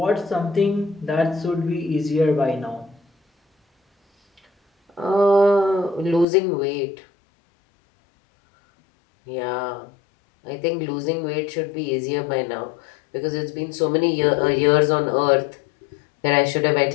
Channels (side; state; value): right; drops out; at 6.2 s